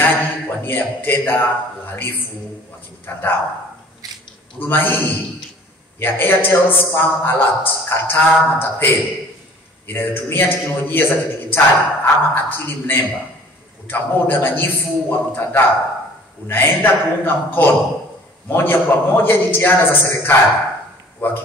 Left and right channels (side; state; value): both; normal; correlation 0.51